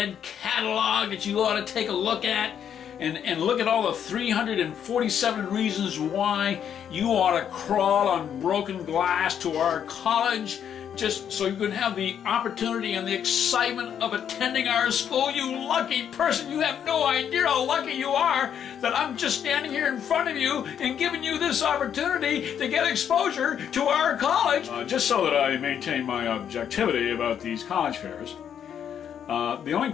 catalog that you ought to take a look at, and look at all the 347 reasons why you ought to crawl on broken glass to our college just so you can have the opportunity and the excitement of attending our school. You lucky person, you have no idea how lucky you are that I'm just standing here in front of you and giving you this opportunity to get exposure to our college. Just so that I maintain my objectivity about these college fairs, the only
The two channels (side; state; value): right; quieter; 8.8 dB